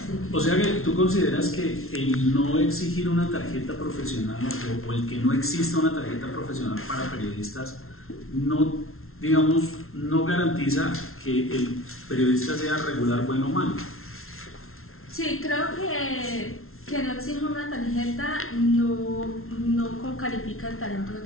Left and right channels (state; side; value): late; right; 0.62 ms